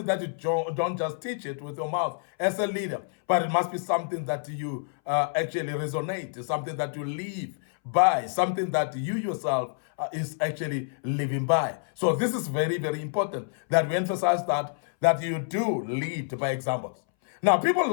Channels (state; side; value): silent; right; 60 dB below the other